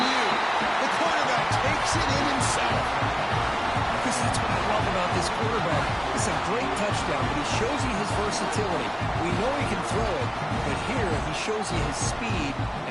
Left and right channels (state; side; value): identical; both; correlation 1.00